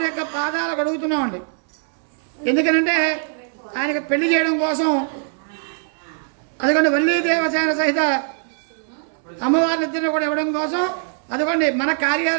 యొక్క పాదాలు కడుగుతున్నామండి. ఎందుకనంటే ఆయనకు పెళ్లి చేయడం కోసం, అదిగోండి వల్లీ దేవసేన సహిత అమ్మవారిని ఇద్దరిని కూడా ఇవ్వడం కోసం, అదిగోండి మన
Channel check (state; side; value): silent; left; digital silence